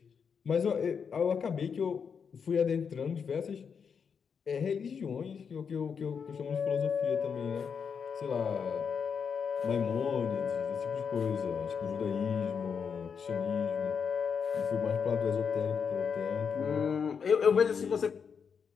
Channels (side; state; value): right; quieter; 6.5 dB